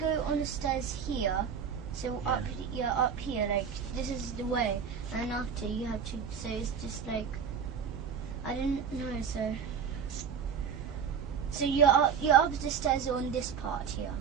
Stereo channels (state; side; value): quieter; left; 7.0 dB